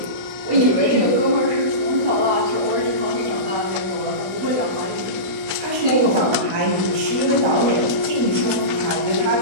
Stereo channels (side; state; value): left; late; 16 ms